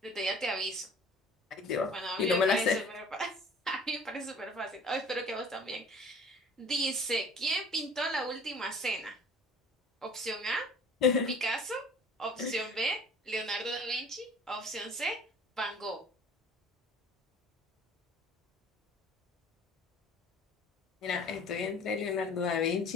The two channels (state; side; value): normal; both; correlation 0.48